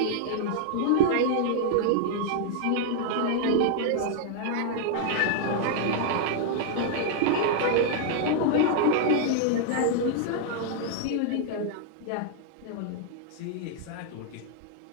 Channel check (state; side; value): different; both; correlation -0.01